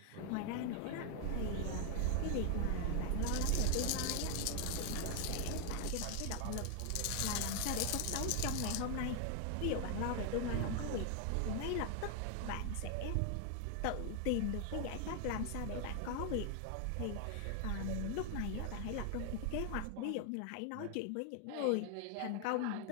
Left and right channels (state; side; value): different; both; correlation 0.00